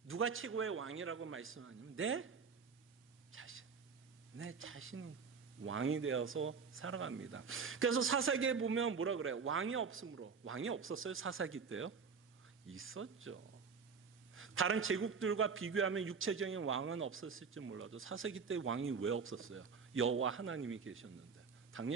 누가 최고의 왕이라고 말씀하냐면 내 자신이 왕이 되어서 살아갑니다. 그래서 사사기에 보면 뭐라 그래요? 왕이 없었어요? 사사기 때요? 있었죠. 다른 제국들과 비교하면 육체적인 왕은 없었을지 몰라도 사사기 때 왕이 왜 없었어요? 여호와 하나님이 계셨는데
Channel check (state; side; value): quieter; left; 5.7 dB